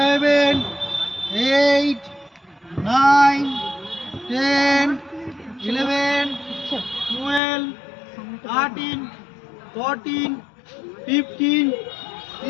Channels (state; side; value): drops out; right; at 7.4 s